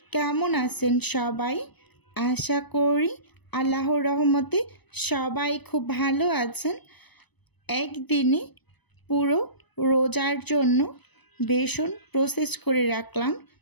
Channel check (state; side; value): late; right; 1.0 ms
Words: কেমন আছেন সবাই? আশা করি আল্লাহর রহমতে সবাই খুব ভালো আছেন। একদিনে পুরো রোজার জন্য বেসন প্রসেস করে রাখলাম,